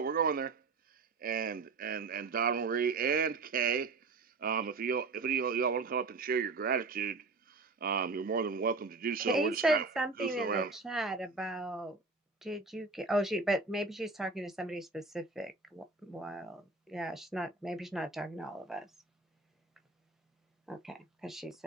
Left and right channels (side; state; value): left; quieter; 4.0 dB